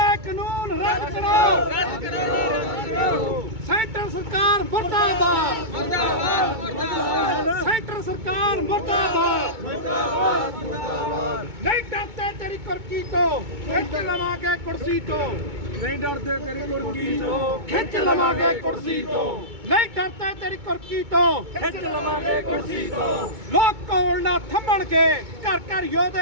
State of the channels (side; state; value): left; late; 2.2 ms